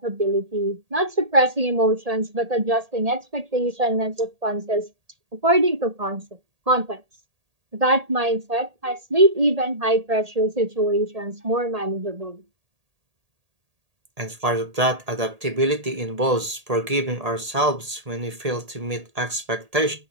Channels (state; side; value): late; left; 1.8 ms